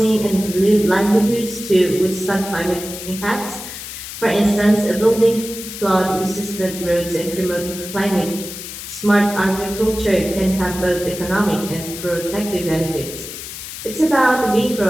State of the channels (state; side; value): noise; left; hiss, 10 dB below the sound